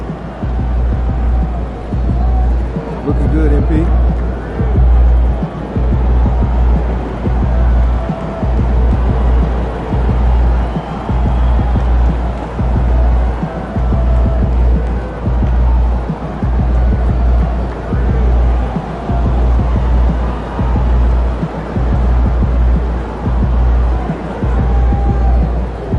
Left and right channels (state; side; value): identical; both; correlation 1.00